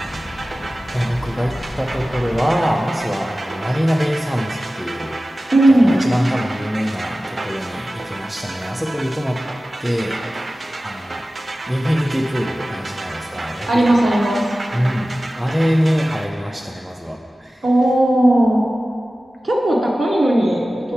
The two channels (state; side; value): normal; both; correlation 0.96